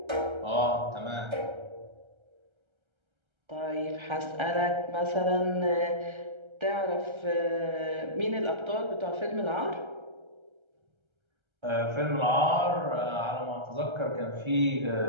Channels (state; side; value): late; left; 1.3 ms